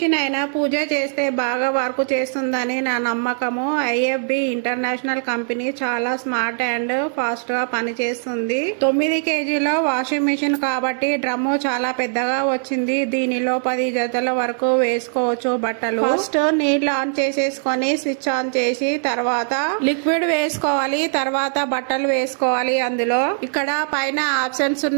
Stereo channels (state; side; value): silent; left; 65 dB below the other